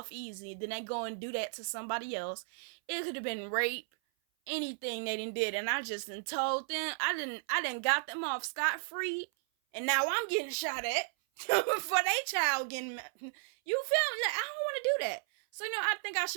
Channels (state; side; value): silent; left; 55 dB below the other